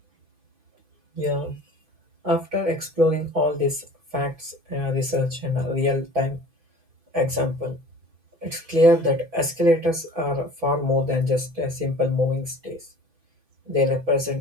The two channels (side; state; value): left; late; 6.0 ms